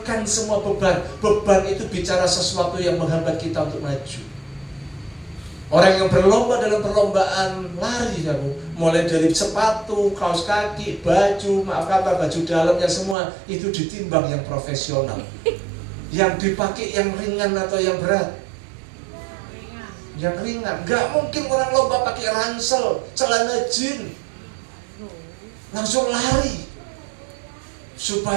semua beban. Beban itu bicara sesuatu yang menghambat kita untuk maju. Orang yang berlomba dalam perlombaan lari, mulai dari sepatu, kaos kaki, baju, baju dalamnya semua itu ditimbang yang profesional. Yang dipakai yang ringan atau yang berat? Yang ringan. Gak mungkin orang lomba pakai ransel, celana jeans, langsung lari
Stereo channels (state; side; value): drops out; left; at 13.2 s